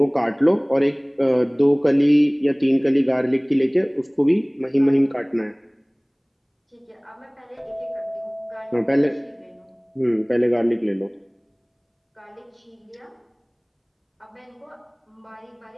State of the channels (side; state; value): both; identical; correlation 1.00